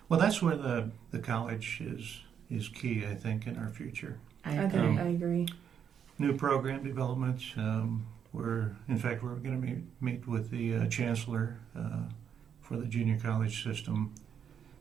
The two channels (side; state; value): left; quieter; 8.1 dB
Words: Well, that's where the college is key, I think, in our future. I I agree. think I agree. New program development. We're going to meet with the chancellor for the junior college system